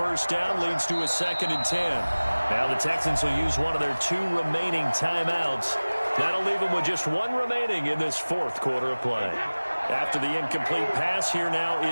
down leads to a 2nd and 10. Now the Texans will use one of their 2 remaining timeouts. That'll leave them with just 1 remaining in this 4th quarter of play. After the incomplete pass, here now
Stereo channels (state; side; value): inverted; both; correlation -1.00